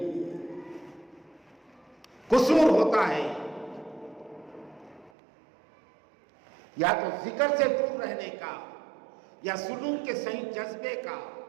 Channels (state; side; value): drops out; left; at 5.1 s